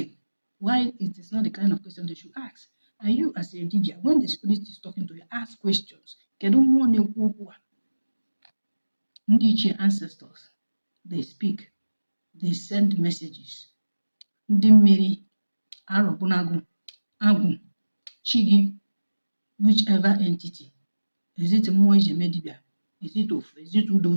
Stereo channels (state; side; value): inverted; both; correlation -1.00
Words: why it is not the kind of question they should ask. And you, as a Dibia, when the spirit is talking to you, ask questions. Ndị ancestors, they speak, they send messages. Ndị mmiri, Arọbụnagụ, Agwụ, Chigi, whichever entity. Is it mmụọ iji eme dibịa? Is it Ofu? Is it Udo?